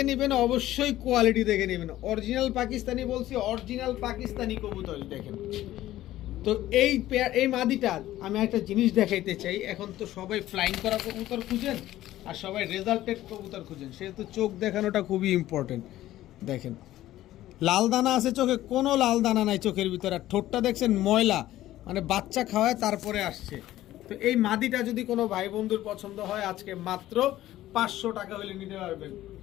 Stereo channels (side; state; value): right; quieter; 14.5 dB